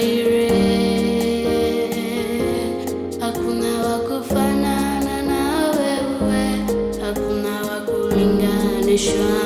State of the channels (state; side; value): identical; both; correlation 1.00